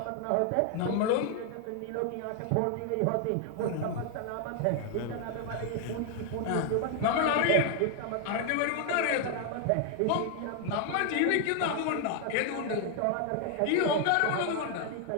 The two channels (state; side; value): different; both; correlation 0.00